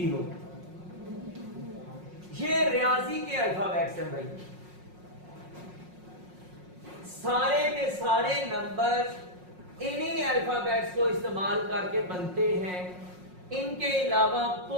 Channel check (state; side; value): late; left; 5.5 ms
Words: یہ ریاضی کے الفابیٹس ہیں بھائی۔ سارے کے سارے نمبر انہی الفابیٹس کو استعمال کر کے بنتے ہیں، ان کے علاوہ